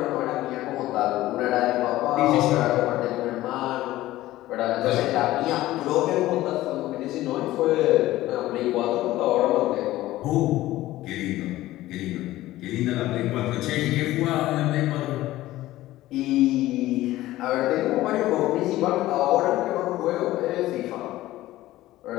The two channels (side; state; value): right; quieter; 16.0 dB